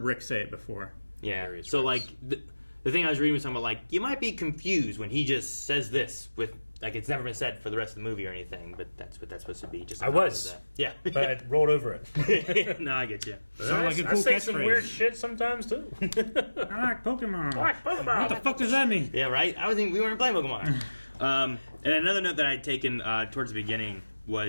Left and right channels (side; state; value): both; inverted; correlation -1.00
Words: say it before. Yeah. So like the thing I was reading was talking about like you might be confused when he just says this with like it's never been said for the rest of the movie or anything, but that's what that's supposed to be. Just a I nod was. to that. Yeah. But I rolled over it. No, I get you. Sounds like a cool I say catchphrase. some weird shit sometimes too. I like Pokemon. I like Pokemon. What the fuck does that mean? Yeah, right. I was thinking we weren't playing Pokemon. And another note that I had taken towards the beginning